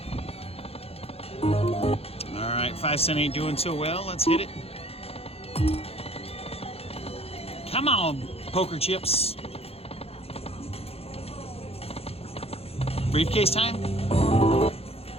All right, 5 cent ain't doing so well. Let's hit it. Come on, poker chips. Briefcase time?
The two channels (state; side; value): late; right; 0.29 ms